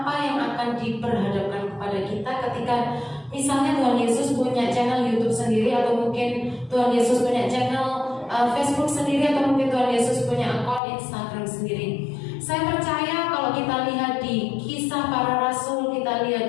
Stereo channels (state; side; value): drops out; right; at 10.8 s